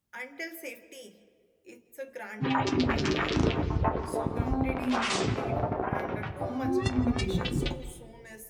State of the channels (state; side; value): identical; both; correlation 1.00